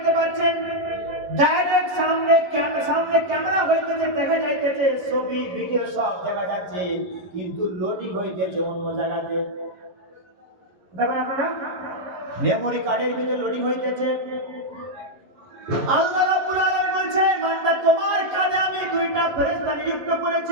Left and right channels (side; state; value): left; late; 11 ms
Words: পাচ্ছেন, ডাইরেক্ট সামনে ক্যামেরা হইতেছে, দেখা যাইতেছে ছবি ভিডিও সব দেখা যাচ্ছে, কিন্তু লোডিং হইতেছে অন্য জায়গাতে। দেখেন আপনারা, মেমরি কার্ডের ভিতরে লোডিং হইতেছে। আল্লাহ রাব্বুল আলামিন বলছেন বান্দা তোমার কাজে আমি দুইটা ফেরেশতা নিযুক্ত